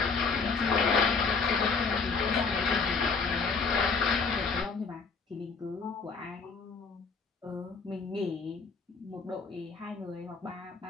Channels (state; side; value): quieter; right; 4.8 dB